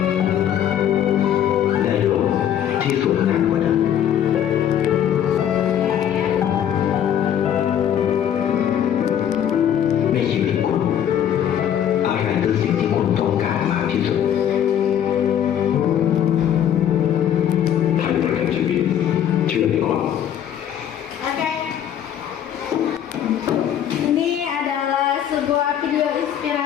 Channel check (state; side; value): quieter; right; 9.9 dB